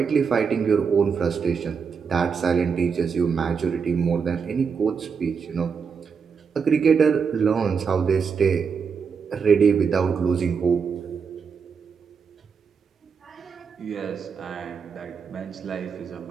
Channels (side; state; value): left; quieter; 6.0 dB